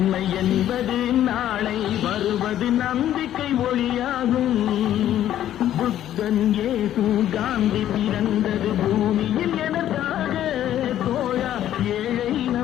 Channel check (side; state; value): right; quieter; 11.8 dB